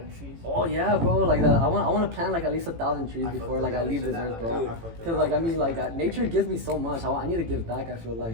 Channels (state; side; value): late; left; 18 ms